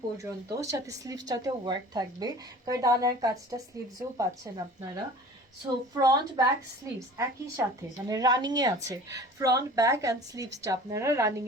পর্যন্ত, সাথে স্লিভসটাতেও ওয়ার্ক থাকবে। কারদানার কাজটা স্লিভসেও পাচ্ছেন আপনারা। সো ফ্রন্ট ব্যাক স্লিভস একই সাথে, মানে রানিংয়ে আছে। ফ্রন্ট ব্যাক অ্যান্ড স্লিভসটা আপনারা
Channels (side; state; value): both; normal; correlation 0.43